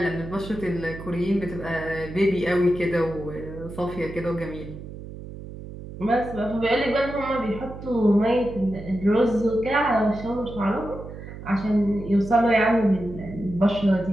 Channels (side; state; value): right; noise; hum, 12 dB below the sound